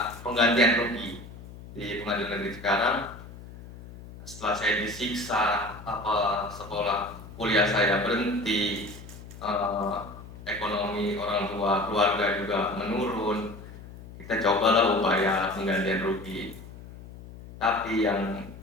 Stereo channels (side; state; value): left; noise; hum, 16 dB below the sound